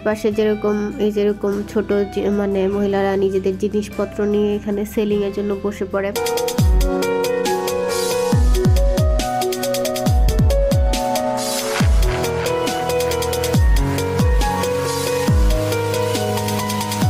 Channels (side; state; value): both; identical; correlation 1.00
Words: যেরকম ছোট মহিলারা নিজেদের জিনিসপত্র নিয়ে এখানে সেলিং এর জন্য বসে পড়ে।